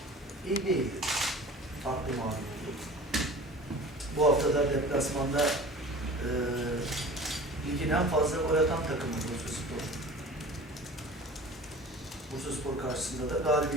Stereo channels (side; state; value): both; normal; correlation 0.41